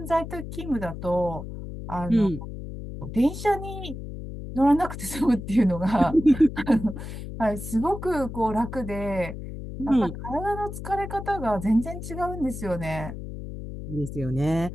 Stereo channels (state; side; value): noise; left; hum, 9 dB below the sound